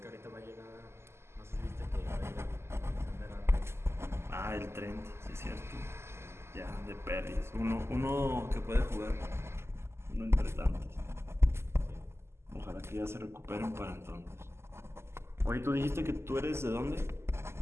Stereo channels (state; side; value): late; left; 0.12 ms